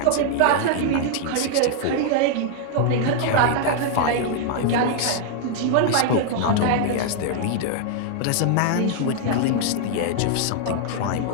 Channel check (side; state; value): both; different; correlation 0.00